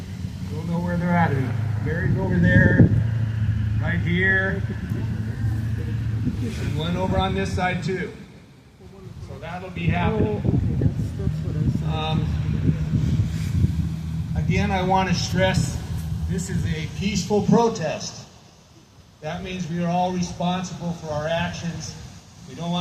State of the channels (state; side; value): identical; both; correlation 1.00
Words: Don't know where they're at. Mary's over there, right here, and one over on this side too. So that'll be happening. Again, I want to stress this is a peaceful protest. That means we are all responsible for our actions. We don't